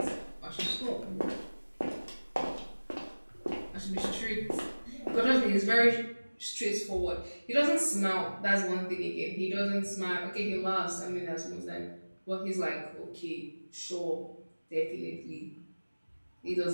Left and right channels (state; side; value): inverted; both; correlation -1.00